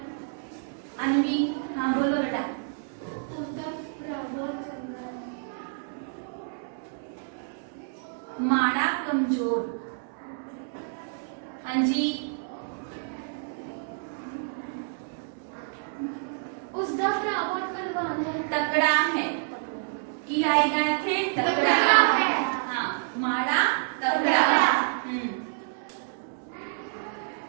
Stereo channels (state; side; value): silent; left; digital silence